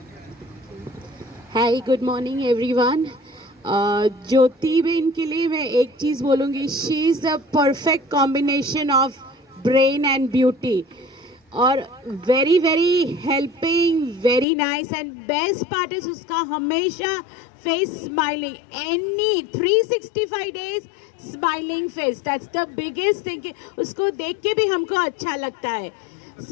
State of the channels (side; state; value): right; drops out; at 14.5 s